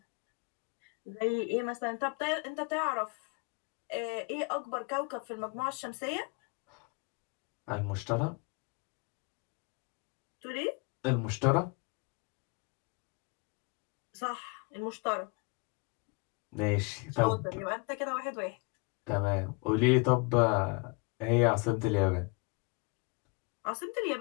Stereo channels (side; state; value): right; quieter; 30.1 dB